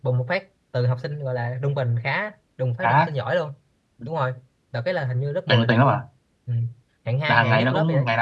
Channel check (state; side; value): identical; both; correlation 1.00